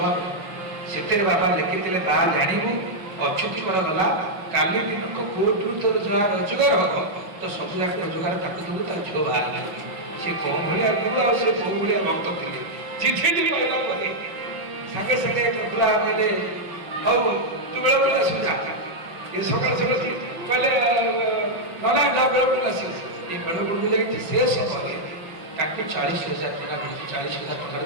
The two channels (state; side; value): late; left; 5.8 ms